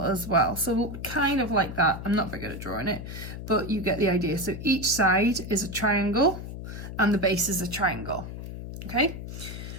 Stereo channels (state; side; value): noise; left; hum, 9 dB below the sound